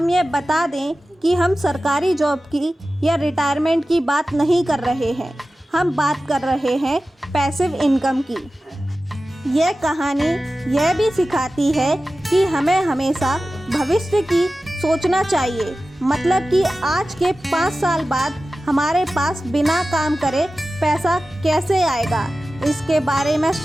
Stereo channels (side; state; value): both; normal; correlation 0.95